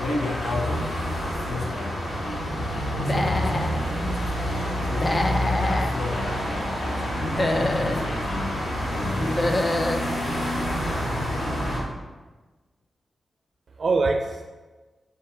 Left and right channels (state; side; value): normal; both; correlation 0.88